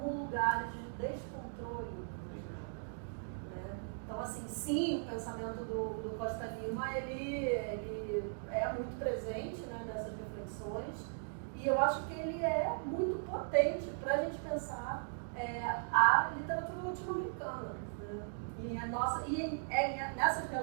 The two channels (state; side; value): silent; left; digital silence